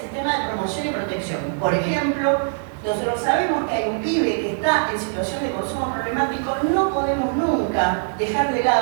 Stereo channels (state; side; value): silent; left; digital silence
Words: de promoción y protección. Por ejemplo, nosotros sabemos que hay un pibe que está en situación de consumo problemático, no podemos nunca dejar de